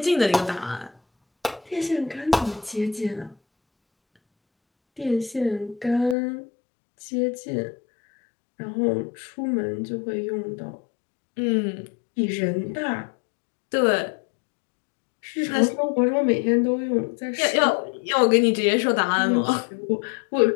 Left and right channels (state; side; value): drops out; right; at 6.2 s